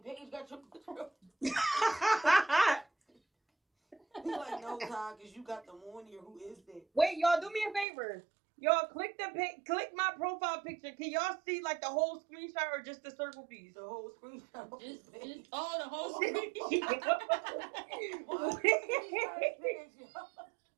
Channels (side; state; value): left; drops out; at 7.9 s